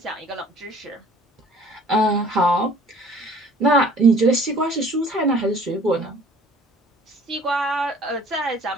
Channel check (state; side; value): normal; both; correlation 0.52